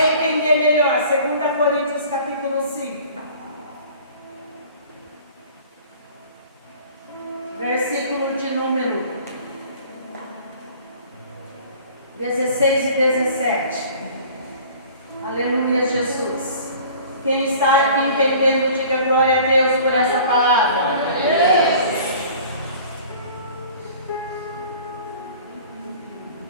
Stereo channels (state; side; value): inverted; both; correlation -0.47